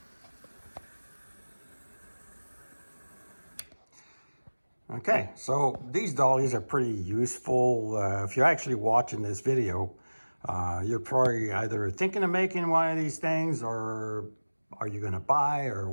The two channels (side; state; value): both; inverted; correlation -1.00